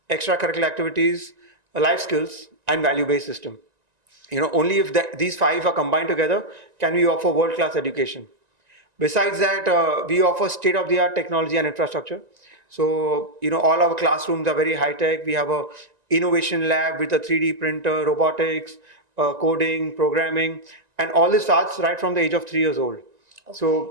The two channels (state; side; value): late; left; 1.9 ms